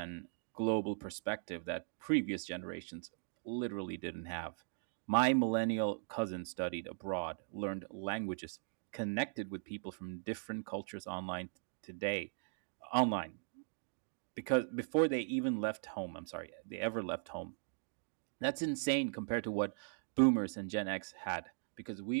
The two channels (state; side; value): silent; left; digital silence